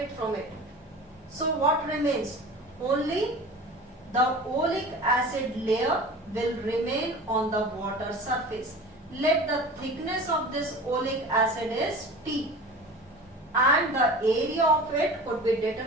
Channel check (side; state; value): both; normal; correlation 0.37